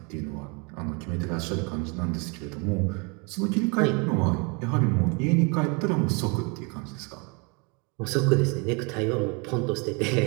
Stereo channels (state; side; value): quieter; left; 30.7 dB